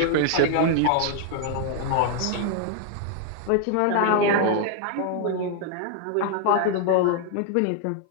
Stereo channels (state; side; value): different; both; correlation -0.01